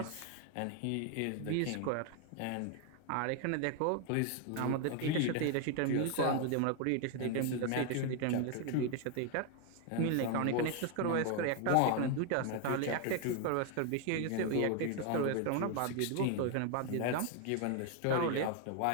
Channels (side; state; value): both; different; correlation 0.01